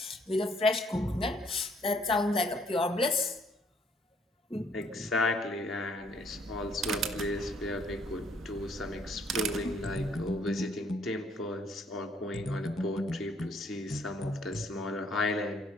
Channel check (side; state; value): both; normal; correlation 0.64